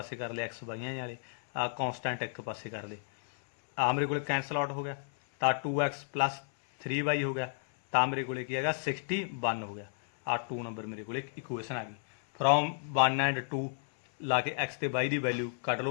ਕਰ ਲਿਆ, XY ਵਾਲੇ ਆ ਕੌਨਸਟੈਂਟ ਇੱਕ ਪਾਸੇ ਕਰ ਲਏ। ਆ ਮੇਰੇ ਕੋਲੇ ਕੈਂਸਲ ਆਊਟ ਹੋ ਗਿਆ, ਤਾਂ 2X ਪਲੱਸ 3Y ਹੋ ਗਿਆ। ਤਾਂ ਮੇਰੇ ਕੋਲੇ ਕੀ ਹੈਗਾ 61 ਹੋ ਗਿਆ। ਆ 2 ਨੰਬਰ ਮੇਰੇ ਕੋਲੇ ਇਕੁਏਸ਼ਨ ਆ ਗਈ। ਫਰੋਮ 1 ਐਂਡ 2 ਲਾ ਕੇ x ਤੇ y ਦੀ ਵੈਲਿਊ ਕੱਢ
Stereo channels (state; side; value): silent; right; 56 dB below the other